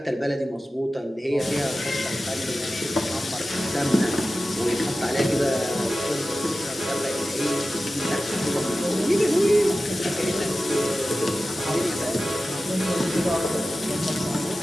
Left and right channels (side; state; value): both; normal; correlation 0.94